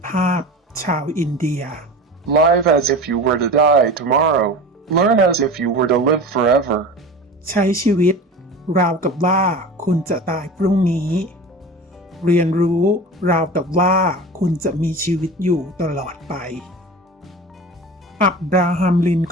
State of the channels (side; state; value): both; normal; correlation 0.33